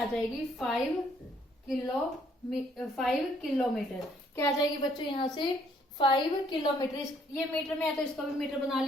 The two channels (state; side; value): normal; both; correlation 0.65